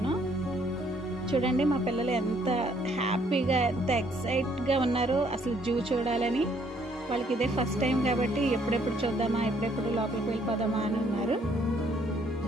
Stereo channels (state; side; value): normal; both; correlation 0.66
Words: చూడండి మా పిల్లలు ఎంత హ్యాపీగా, ఎంత ఎక్సైట్గా ఉన్నారో అసలు జూ చూడాలని. వాళ్ళకి ఇదే ఫస్ట్ టైం కాబట్టి ఎప్పుడెప్పుడు చూద్దామా, ఎప్పుడెప్పుడు లోపలికి వెళ్ళిపోదామా అని ఉన్నారు.